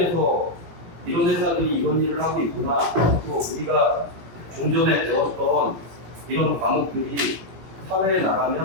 이런 회사들이 이런 일을 하고 있구나, 또 우리가 좀 전에 배웠던 이런 과목들이 사회에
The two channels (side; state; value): left; late; 17 ms